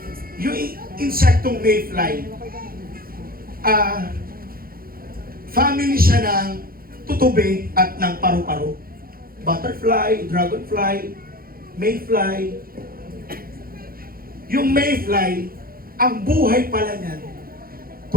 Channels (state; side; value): late; left; 0.42 ms